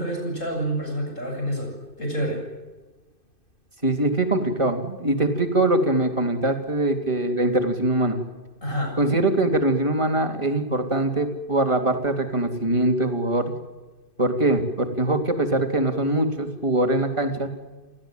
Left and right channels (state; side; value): late; right; 2.6 ms